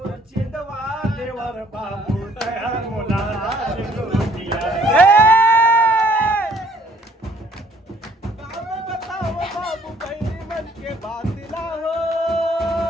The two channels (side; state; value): both; normal; correlation 0.61